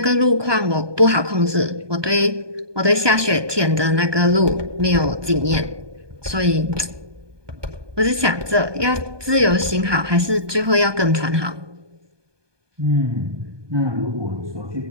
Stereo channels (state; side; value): late; left; 1.2 ms